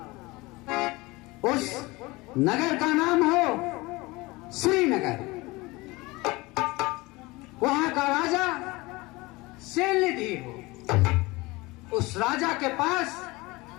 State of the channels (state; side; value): quieter; right; 22.5 dB